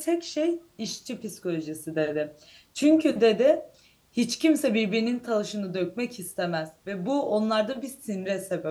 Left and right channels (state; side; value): identical; both; correlation 1.00